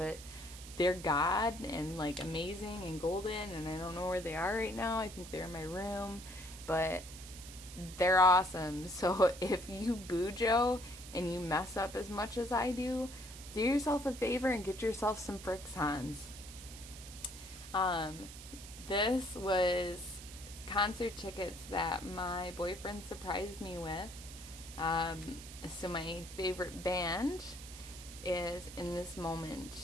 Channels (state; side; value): noise; right; hiss, 14 dB below the sound